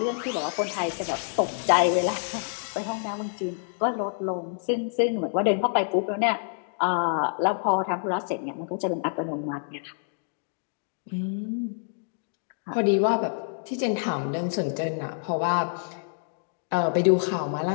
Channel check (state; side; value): silent; right; digital silence